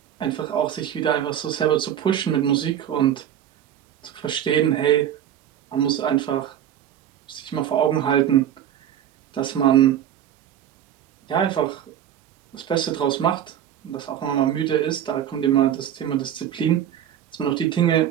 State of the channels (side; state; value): left; quieter; 10.3 dB